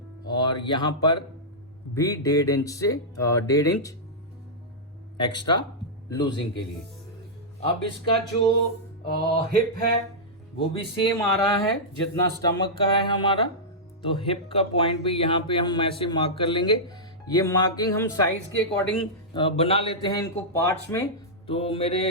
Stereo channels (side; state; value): both; normal; correlation -0.11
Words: और यहां पर भी 1.5 इंच से 1.5 इंच एक्स्ट्रा लूजिंग के लिए। अब इसका जो हिप है वो भी सेम आ रहा है जितना स्टमक का है हमारा, तो हिप का पॉइंट भी यहाँ पे हम ऐसे मार्क कर लेंगे। ये मार्किंग हम साइज के अकॉर्डिंग बना लेते हैं इनको पार्ट्स में, तो